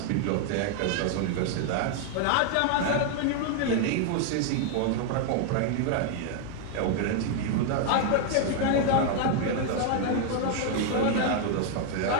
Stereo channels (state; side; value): different; both; correlation 0.00